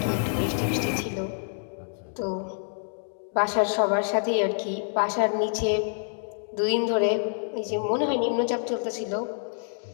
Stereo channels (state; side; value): silent; right; digital silence